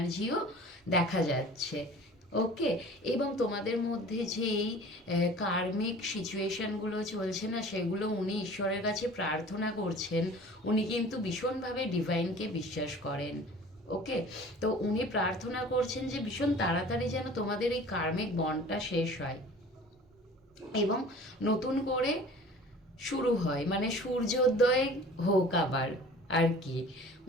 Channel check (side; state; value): both; normal; correlation 0.44